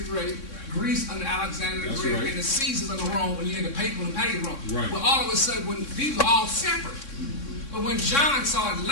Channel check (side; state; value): right; late; 3.6 ms